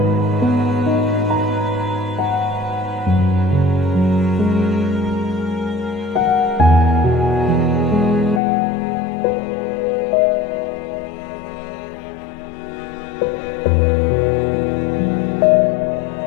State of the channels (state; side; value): drops out; right; at 8.4 s